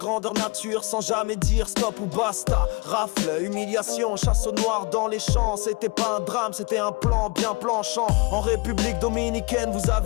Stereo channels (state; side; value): quieter; right; 28.2 dB